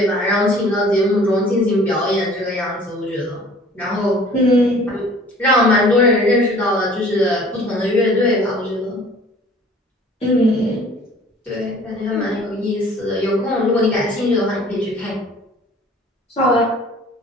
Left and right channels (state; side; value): normal; both; correlation 0.51